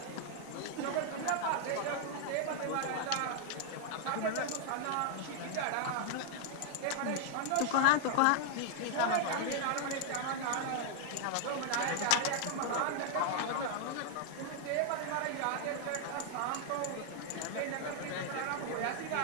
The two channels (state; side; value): different; both; correlation 0.00